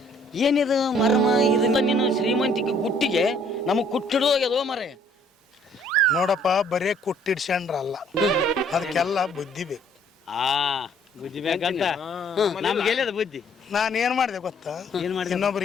ಏನಿದು ಮರ್ಮ ಇದನ್ನ ನೀನು ಶ್ರೀಮಂತಿಕೆ ಗುಟ್ಟಿಗೆ ನಮಗ್ ಕುಟ್ಟಿಡೋಗ್ಯದೋ ಮರೆ ನೋಡಪ್ಪ ಬರೇ ಕುಟ್ಟಿಡ್ಸ್ಕೊಂಡ್ರಲ್ಲ ಅದಕ್ಕೆಲ್ಲ ಬುದ್ಧಿ ಬೇಕು ಬುದ್ಧಿ ಬೇಕಂತ ನಮ್ಗೆ ಬುದ್ಧಿ ನಾನು ಏನ್ ಮಾಡಿದೆ ಗೊತ್ತಾ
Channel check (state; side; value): normal; both; correlation 0.61